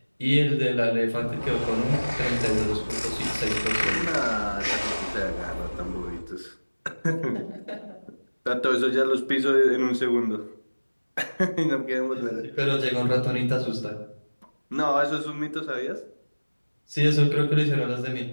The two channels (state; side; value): inverted; both; correlation -1.00